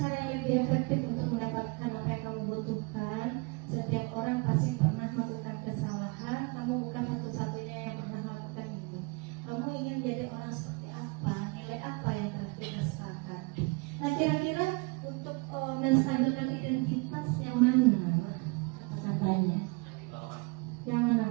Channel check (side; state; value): left; quieter; 29.0 dB